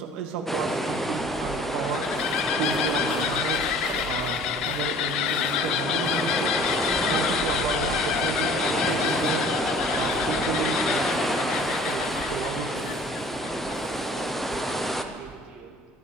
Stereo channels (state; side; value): normal; both; correlation 0.50